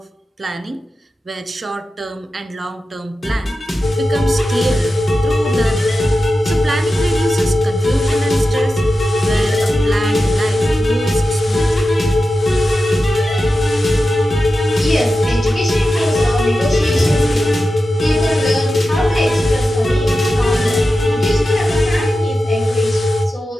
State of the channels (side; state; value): both; normal; correlation 0.92